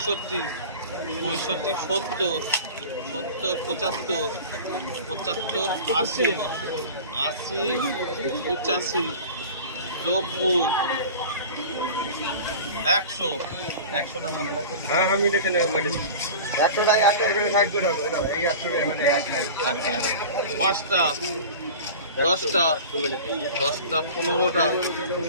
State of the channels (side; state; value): both; inverted; correlation -0.36